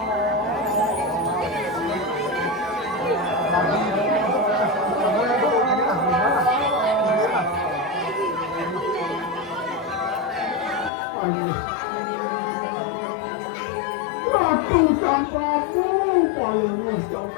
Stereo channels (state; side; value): drops out; right; at 10.9 s